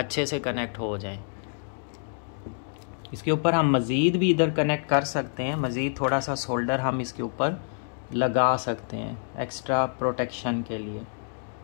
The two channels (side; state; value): right; silent; digital silence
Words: से कनेक्ट हो जाए। इसके ऊपर हम मज़ीद भी इधर कनेक्ट कर सकते हैं, मज़ीद थोड़ा सा सोल्डर हम इसके ऊपर लगा सकते हैं एक्स्ट्रा प्रोटेक्शन के लिए।